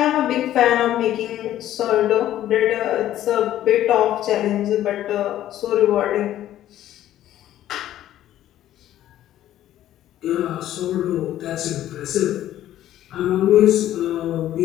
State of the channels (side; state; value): right; quieter; 12.7 dB